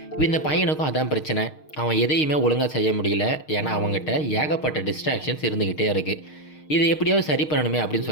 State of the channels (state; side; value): late; right; 6.5 ms